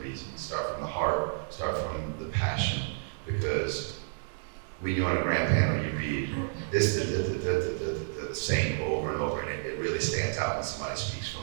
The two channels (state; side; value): silent; left; digital silence